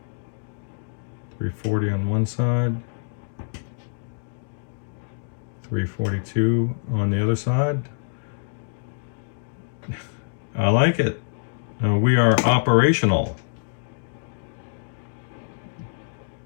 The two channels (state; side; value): silent; right; digital silence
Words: 340 on one side. 342 on the other side. I like it. We are operational.